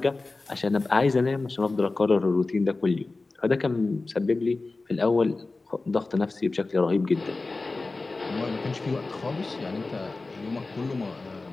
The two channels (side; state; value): right; quieter; 3.5 dB